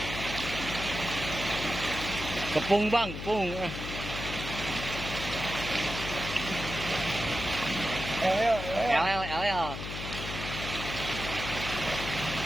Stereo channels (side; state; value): left; noise; hum, 7 dB below the sound